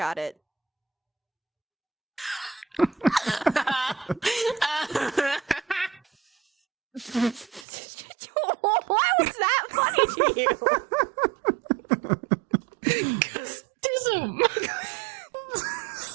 it. Why was that funny to you? Custism.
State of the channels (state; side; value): drops out; left; at 7.7 s